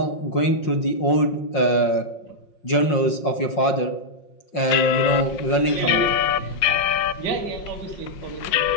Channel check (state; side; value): late; right; 5.6 ms